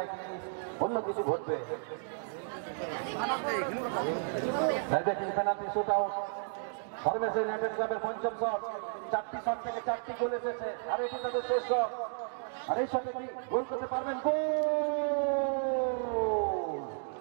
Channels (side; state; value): left; silent; digital silence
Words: অন্য কিছু ঘটবে। দেখেন penalty shoot out Bangladesh United ক্লাবের পঞ্চম শট। 4টি শট থেকে 4টি গোল এসেছে, আর এটি তাদের শেষ শট। আর এই শটে কি গোল করতে পারবেন? গোল!